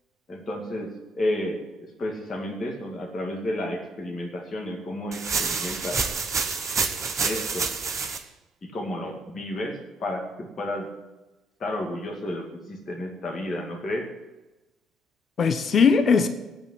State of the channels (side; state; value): both; normal; correlation 0.71